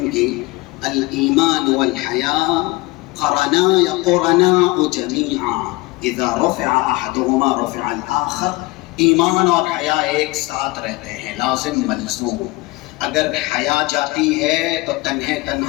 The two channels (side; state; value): right; quieter; 22.0 dB